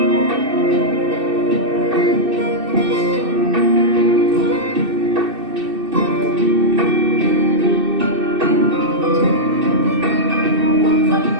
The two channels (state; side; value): late; left; 2.6 ms